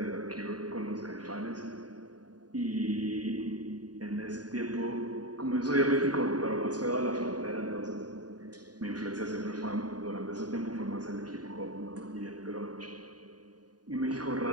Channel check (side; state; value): left; late; 0.69 ms